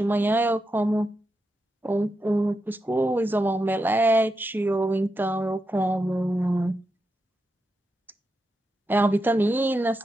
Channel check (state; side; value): normal; both; correlation 0.87